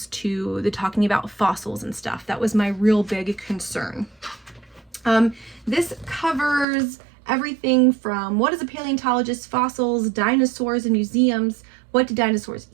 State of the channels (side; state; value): left; drops out; at 6.7 s